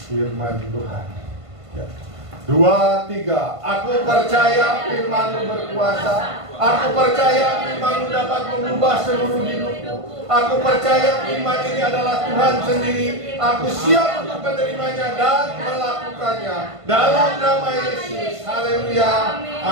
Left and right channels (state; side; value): late; left; 1.5 ms